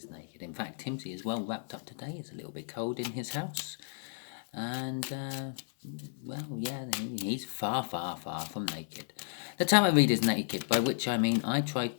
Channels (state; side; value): silent; right; digital silence